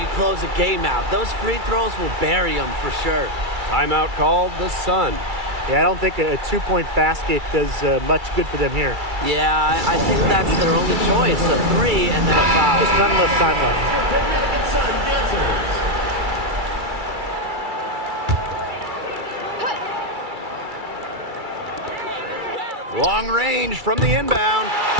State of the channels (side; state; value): left; late; 2.3 ms